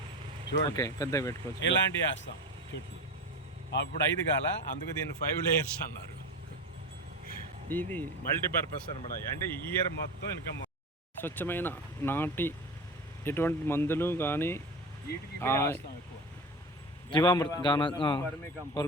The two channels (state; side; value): normal; both; correlation 0.27